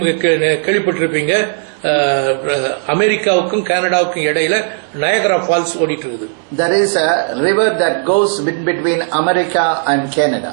கேள்விப்பட்டிருப்பீங்க, அமெரிக்காவுக்கும் கனடாவுக்கும் இடையில நயகரா ஃபால்ஸ் ஓடிட்டு இருக்குது. There is a river that goes between America and Canada.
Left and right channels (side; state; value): left; silent; digital silence